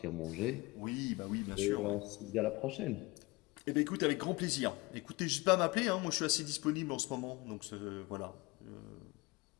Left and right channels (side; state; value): right; quieter; 23.0 dB